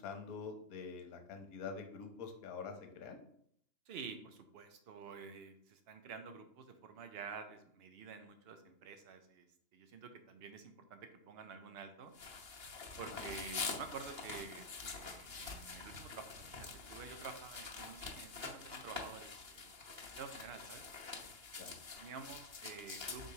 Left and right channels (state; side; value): late; left; 2.9 ms